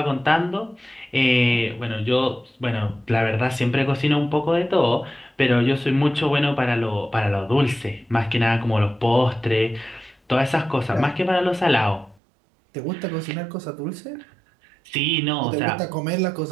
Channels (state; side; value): drops out; left; at 12.2 s